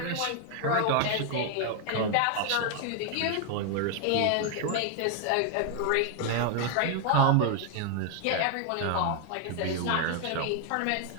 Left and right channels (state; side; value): different; both; correlation 0.00